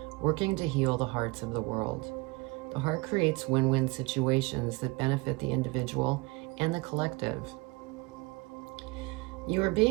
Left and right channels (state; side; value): quieter; left; 25.2 dB